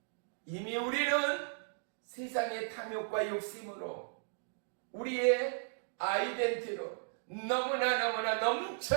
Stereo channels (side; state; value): left; silent; digital silence